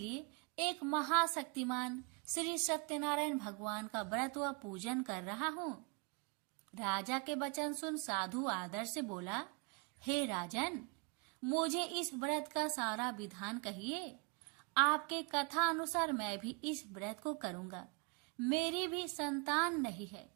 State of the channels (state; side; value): quieter; left; 30.9 dB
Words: एक महाशक्तिमान श्री सत्यनारायण भगवान का व्रत व पूजन कर रहा हूँ। राजा के वचन सुन साधु आदर से बोला, हे राजन, मुझे इस व्रत का सारा विधान कहिए। आपके कथा अनुसार मैं भी इस व्रत को करूंगा। मेरी भी संतान नहीं है